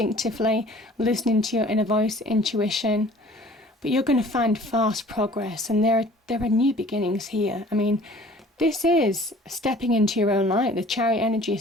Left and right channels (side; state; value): both; normal; correlation 0.50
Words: listening to your inner voice, intuition. But you're going to find fast progress, and there are new beginnings here. I mean, this is stepping into your own light. The Chariot energy